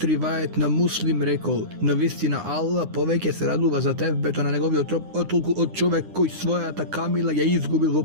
ривајет на Муслим рекол: Навистина Аллах повеќе се радува за тевбето на неговиот троп, отколку од човек кој својата камила ја изгубил во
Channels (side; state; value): left; late; 9.8 ms